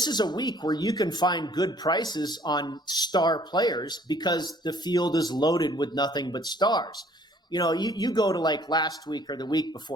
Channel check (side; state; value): both; normal; correlation 0.58